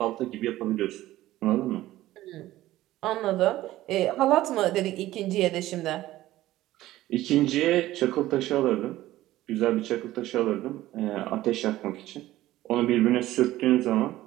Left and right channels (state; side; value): quieter; left; 15.6 dB